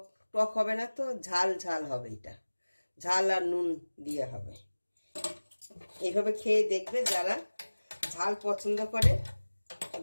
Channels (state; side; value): inverted; both; correlation -1.00